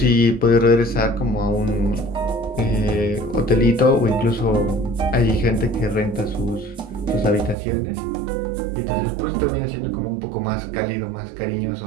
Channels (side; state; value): left; drops out; at 7.6 s